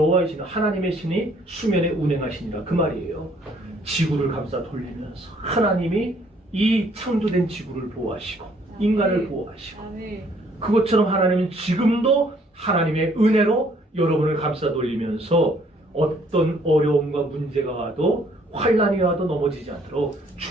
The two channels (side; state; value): both; normal; correlation 0.63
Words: 신은 하나님의 신이 수면에 운행하시니라 그 말이에요. 지구를 감싸 돌리면서 하나님이 이 창조된 지구를 보호하시고 인간을 보호하시고 아멘. 그것처럼 하나님은 지금도 하나님의 은혜로 여러분을 감싸 돌리면서 어떤 어려움과 문제가 와도 환난이 와도 넘어지지 않도록